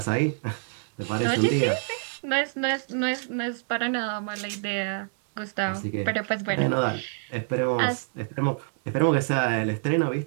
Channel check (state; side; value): silent; left; 59 dB below the other